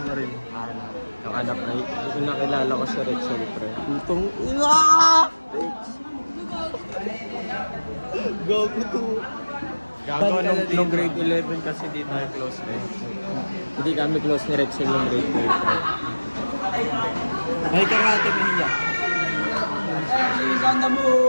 mo? Yung anak na yung nakilala ko sa Rexel, pre. Itong Go to. Gago, nung grade 11 kasi di tayo close eh. Hindi kami close ni Rexel nung grade 12. May ka nga ate Mia.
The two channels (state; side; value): inverted; both; correlation -1.00